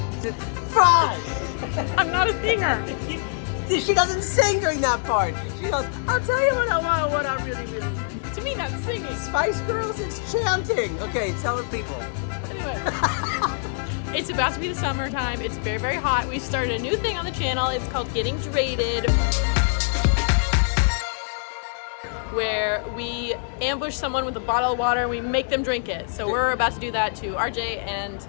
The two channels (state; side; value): silent; right; 62 dB below the other